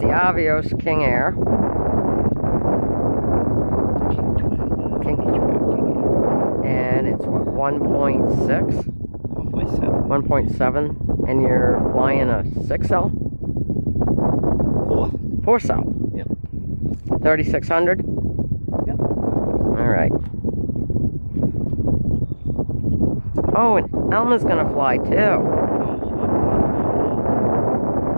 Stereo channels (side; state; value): both; inverted; correlation -1.00